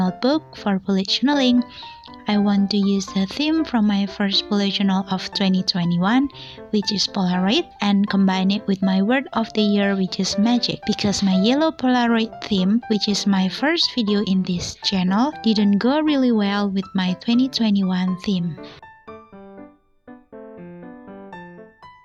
for bullet journaling. I want to use the theme from my first bullet journal of 2021, which is polaroid, and combine it with my word of the year, which is magic, because my yellow polaroid theme, which is my first video in this channel, didn't go really well with my 2021 theme.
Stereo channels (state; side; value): identical; both; correlation 1.00